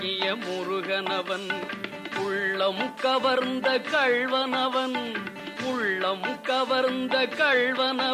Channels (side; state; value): both; identical; correlation 1.00